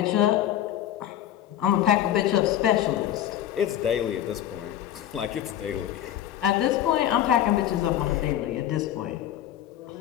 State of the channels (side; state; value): right; quieter; 11.6 dB